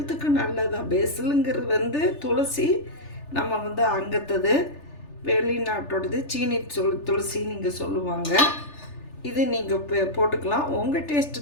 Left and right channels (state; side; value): late; right; 3.4 ms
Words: நல்லதான். பேசிலுங்கிறது வந்து துளசி, நம்ம வந்து அங்கத்தது வெளிநாட்டோடது சீனி துளசி நீங்கள் சொல்லுவாங்க. இது நீங்கள் போட்டுக்கலாம், உங்கள்